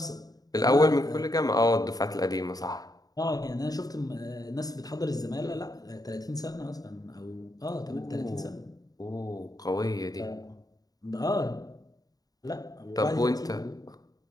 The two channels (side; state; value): right; late; 0.18 ms